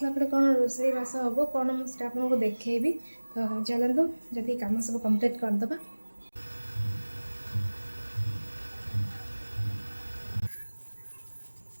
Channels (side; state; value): both; inverted; correlation -1.00